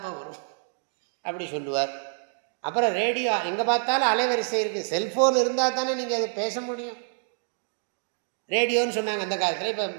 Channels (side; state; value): left; silent; digital silence